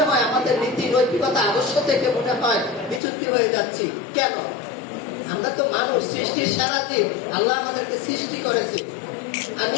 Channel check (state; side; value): drops out; right; at 3.0 s